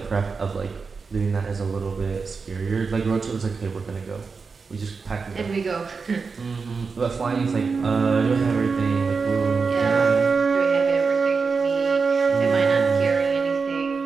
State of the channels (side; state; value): left; quieter; 4.9 dB